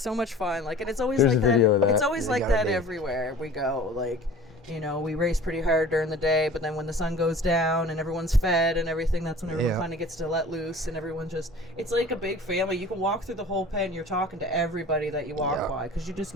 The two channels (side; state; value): both; normal; correlation 0.44